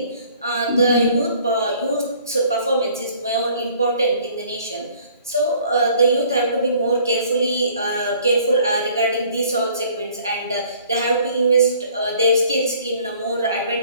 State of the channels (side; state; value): both; inverted; correlation -0.56